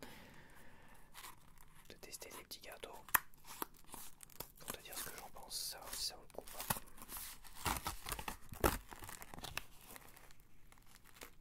De tester des petits gâteaux. Pour te dire ce que j'en pense, savoir si ça vaut le coup ou pas.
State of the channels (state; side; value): identical; both; correlation 1.00